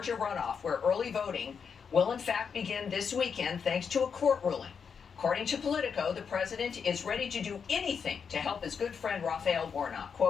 runoff, where early voting will in fact begin this weekend thanks to a court ruling. According to Politico, the president is ready to do anything to help his good friend Raphael Warnock.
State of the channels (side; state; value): right; quieter; 6.4 dB